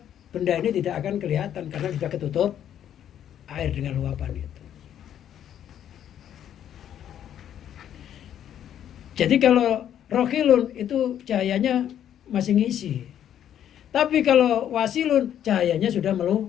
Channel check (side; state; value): right; quieter; 10.2 dB